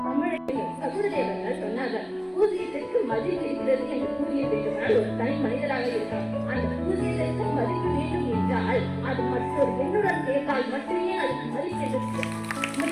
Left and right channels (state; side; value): identical; both; correlation 1.00